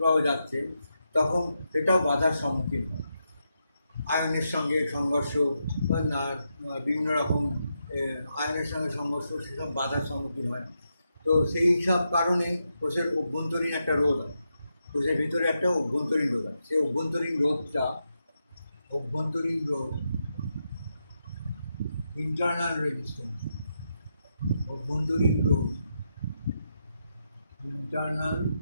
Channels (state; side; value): inverted; both; correlation -0.84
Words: যাচ্ছে তখন সেটাও বাধার সম্মুখীন হয়, আয়নের সঙ্গে সংঘর্ষ, না বিভিন্ন রকম আয়নের সঙ্গে সংঘর্ষ, সেসব বাধার সম্মুখীন হয়। তো সেই সব কারণে কোষের অভ্যন্তরীণ একটা রোধ হয়, কোষের ভিতরে একটা অভ্যন্তরীণ রোধ হয়। সেই অভ্যন্তরীণ রোধ ইন্টারনাল রেজিস্ট্যান্স, অভ্যন্তরীণ রোধ, ইন্টারনাল